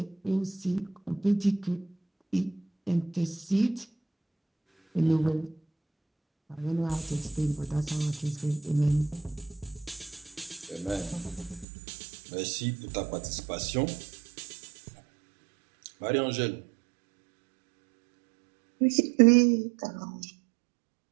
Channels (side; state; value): left; drops out; at 11.7 s